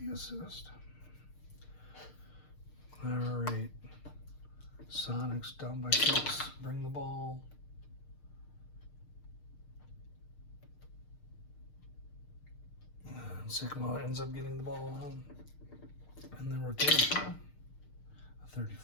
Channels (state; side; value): late; right; 6.6 ms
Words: assist. All right. Sonics down by 6. Bring the ball. And Sigma ends up getting the ball on. And then rotation. A